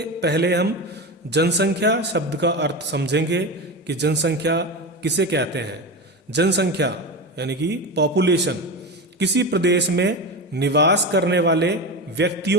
पहले हम जनसंख्या शब्द का अर्थ समझेंगे कि जनसंख्या किसे कहते हैं। जनसंख्या यानी कि पॉपुलेशन किसी प्रदेश में निवास करने वाले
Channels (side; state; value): both; normal; correlation 0.22